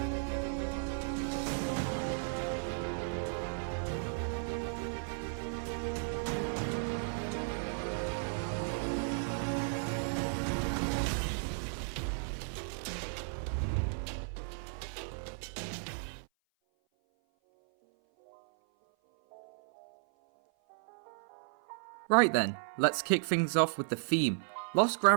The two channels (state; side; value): silent; left; 55 dB below the other